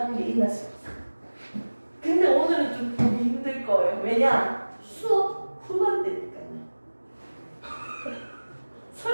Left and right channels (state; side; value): inverted; both; correlation -1.00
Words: 게 있나 싶어서. 근데 오늘은 좀 보기 힘들 거예요. 왜냐? 수업 후반대니까요.